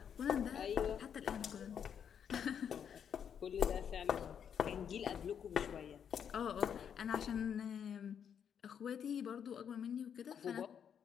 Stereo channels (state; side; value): quieter; right; 8.1 dB